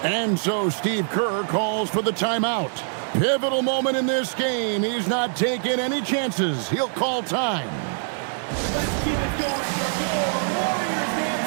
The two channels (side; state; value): left; silent; digital silence